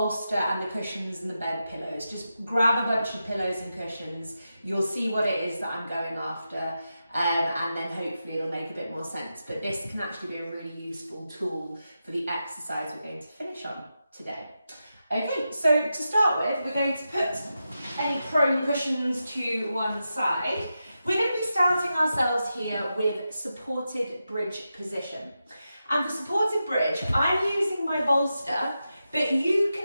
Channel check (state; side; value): inverted; both; correlation -0.89